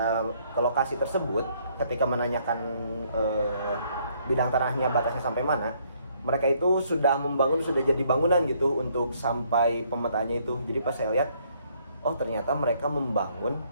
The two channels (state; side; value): inverted; both; correlation -0.67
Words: ke lokasi tersebut, ketika menanyakan bidang tanahnya batasnya sampai mana, mereka itu sudah membangun, sudah jadi bangunan gitu untuk sampai pemetaannya itu. Jadi pas saya lihat, oh ternyata mereka membangun